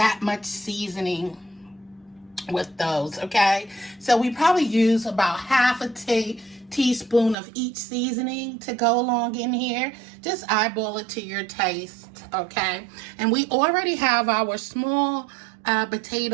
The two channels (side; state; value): left; drops out; at 7.4 s